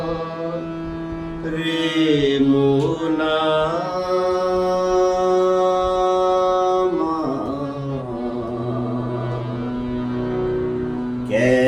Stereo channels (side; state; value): both; identical; correlation 1.00